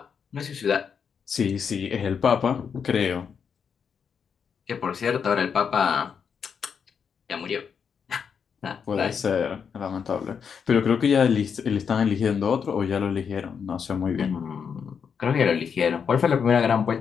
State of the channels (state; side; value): quieter; right; 6.8 dB